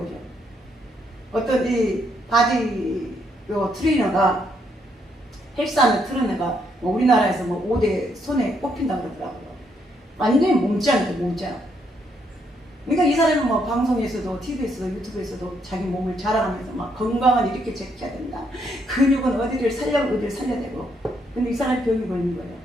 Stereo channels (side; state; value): both; normal; correlation 0.74